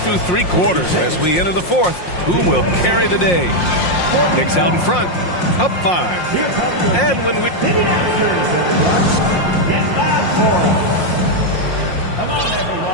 through 3 quarters as we enter the fourth. Who will carry the day? Knicks out in front, up 5. And when we...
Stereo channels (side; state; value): right; late; 5.6 ms